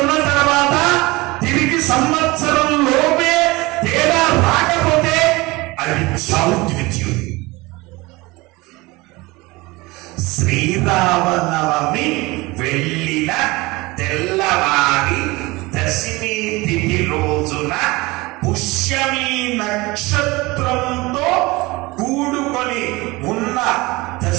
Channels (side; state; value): left; quieter; 22.5 dB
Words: తర్వాత తిరిగి సంవత్సరం లోపే తేడా రాకపోతే అది చావుద్విత్యం. శ్రీరామనవమి వెళ్ళిన తెల్లవారి దశమి తిథి రోజున పుష్యమి నక్షత్రంతో కూడుకొని ఉన్న